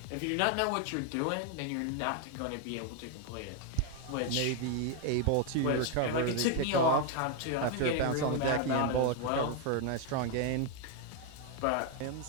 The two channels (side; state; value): both; different; correlation 0.01